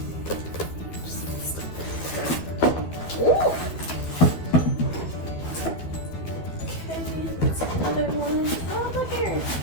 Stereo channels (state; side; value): late; right; 12 ms